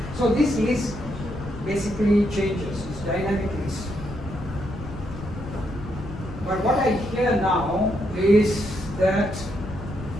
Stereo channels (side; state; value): left; noise; rumble, 11 dB below the sound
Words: So this list basically changes, it's dynamic list. But what I hear now is that